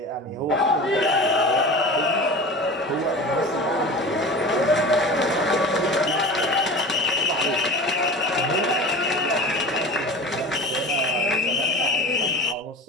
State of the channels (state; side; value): normal; both; correlation 0.35